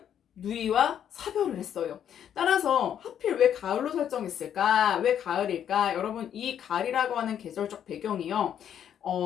누이와 사별을 했어요. 따라서 하필 왜 가을로 설정했을까? 왜 가을일까? 여러분 이 가을이라고 하는 계절적 배경이요.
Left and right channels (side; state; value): right; quieter; 9.4 dB